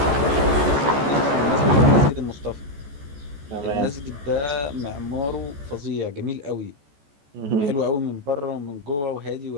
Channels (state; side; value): late; left; 14 ms